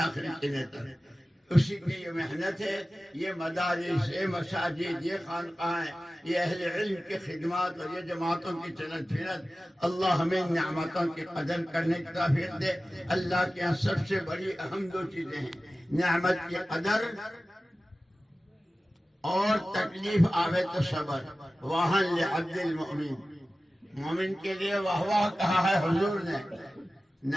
دن تک. اسی کی یہ محنت ہے، یہ مدارس، یہ مساجد، یہ خانقاہیں، یہ اہل علم کی خدمات اور یہ جماعتوں کی چلت پھرت. اللہ ہمیں نعمتوں کی قدر کرنے کی توفیق دے. اللہ کے یہاں سب سے بڑی اہم دو چیزیں ہیں، نعمت کی قدر اور تکلیف آوے تو صبر. واہن لعبد المؤمن، مومن کے لیے واہ واہ کہا ہے حضور نے.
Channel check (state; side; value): normal; both; correlation 0.96